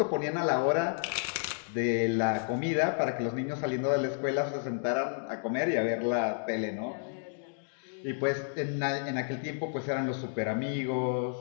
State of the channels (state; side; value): silent; right; digital silence